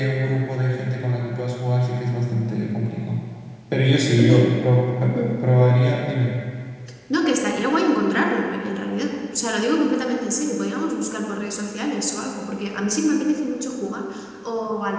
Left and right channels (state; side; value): identical; both; correlation 1.00